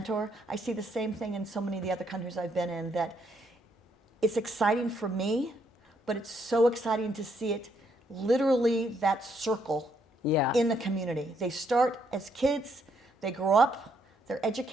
I see the same thing in so many of the other countries I've been in, that it's exciting for me, but it's so exciting to see it literally that circle yeah. in the community. They start as kids, they grow up, they're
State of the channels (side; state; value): both; normal; correlation 0.73